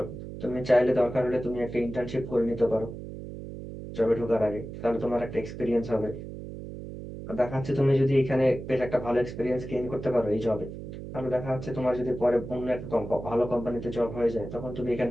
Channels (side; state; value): right; noise; hum, 10 dB below the sound